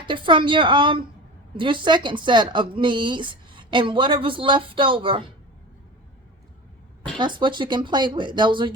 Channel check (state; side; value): normal; both; correlation 0.32